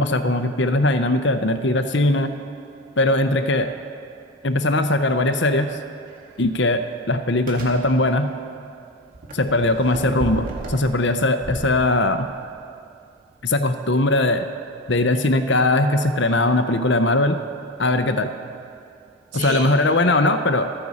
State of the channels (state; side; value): normal; both; correlation 0.22